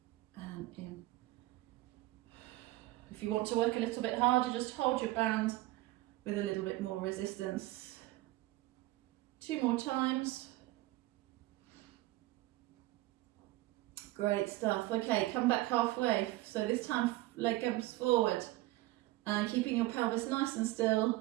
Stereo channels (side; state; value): left; quieter; 18.1 dB